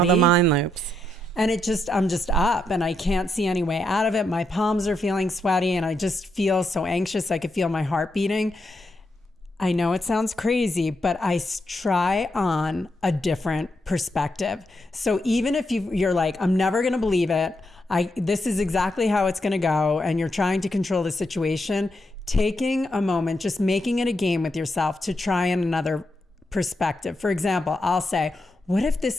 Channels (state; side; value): normal; both; correlation 0.82